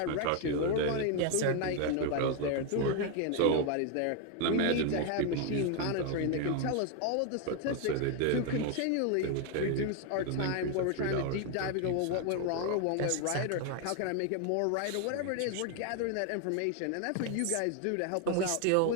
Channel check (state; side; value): different; both; correlation 0.01